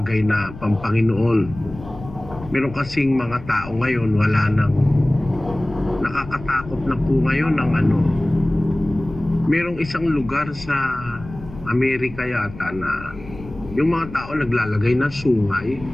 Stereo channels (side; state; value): left; noise; rumble, 15 dB below the sound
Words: na pampanginoon. Meron kasing mga tao ngayon, wala nang nakakatakot na po ngayon ng merong isang lugar sa Amerika yata na yung mga tao naglalagay ng sungay,